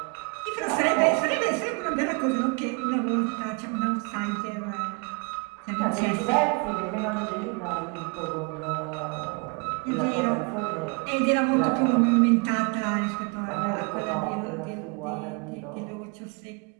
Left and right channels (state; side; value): quieter; left; 31.5 dB